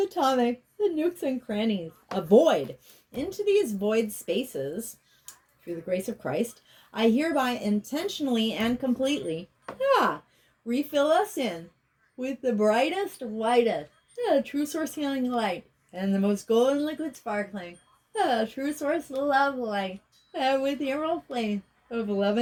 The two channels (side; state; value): both; identical; correlation 1.00